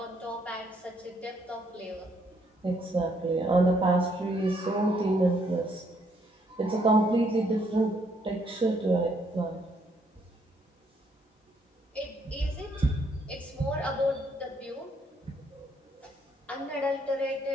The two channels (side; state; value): both; normal; correlation 0.70